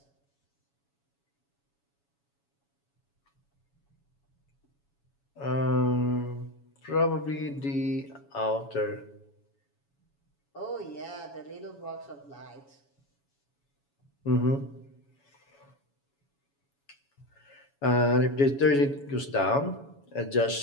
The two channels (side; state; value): right; late; 7.1 ms